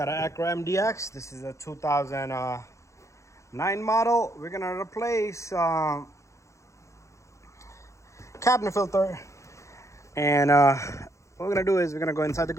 an Acura MDX. This is a 2009 model. We're gonna replace cabinet filter, and what we're gonna do is we're gonna go inside the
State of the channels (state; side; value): late; right; 0.14 ms